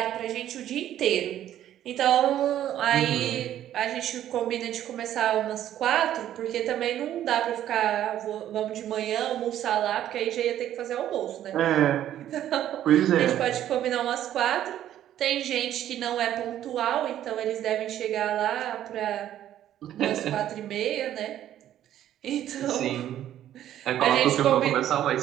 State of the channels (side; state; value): left; quieter; 11.7 dB